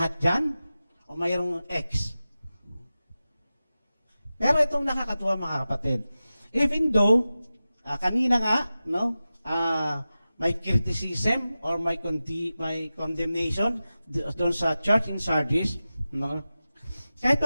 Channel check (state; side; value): inverted; both; correlation -0.95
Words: dyan? O mayroong X? Pero itong nakakatuwa mga kapatid. Even though, kanina nga, may criticism or may condemnation doon sa church in Sardis, no? Kahit